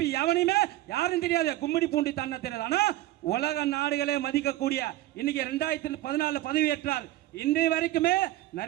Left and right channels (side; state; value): left; quieter; 15.6 dB